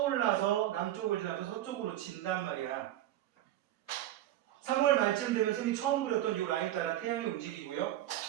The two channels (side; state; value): left; quieter; 13.4 dB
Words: 남쪽을 지나서 서쪽으로 진단 말이야. 3월 말쯤 되면 쌤이 처음 그렸던 이 라인 따라 태양이 움직이고요.